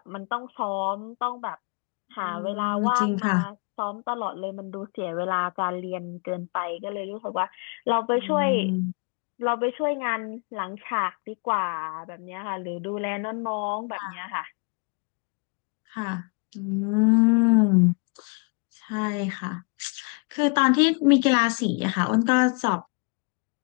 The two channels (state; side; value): quieter; right; 34.1 dB